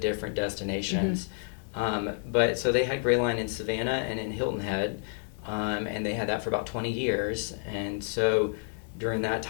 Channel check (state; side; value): silent; right; 58 dB below the other